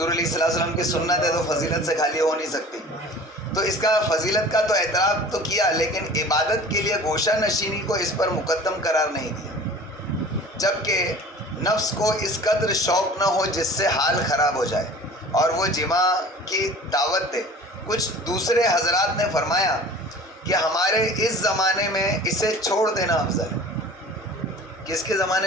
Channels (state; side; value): normal; both; correlation 0.42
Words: علیہ السلام کی سنت ہے تو فضیلت سے خالی ہو نہیں سکتی۔ تو اس کا فضیلت کا تو اعتراف تو کیا، لیکن عبادت کے لیے گوشہ نشینی کو اس پر مقدم قرار نہیں دیا، جبکہ نفس کو اس قدر شوق نہ ہو جس سے حال خراب ہو جائے اور وہ جماع کی دعوت دے۔ کچھ دوسرے حضرات نے فرمایا کہ ہمارے اس زمانے میں اسے چھوڑ دینا افضل ہے۔ کس کے